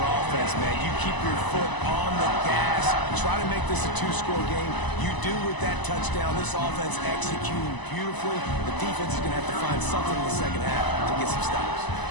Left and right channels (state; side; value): late; right; 1.0 ms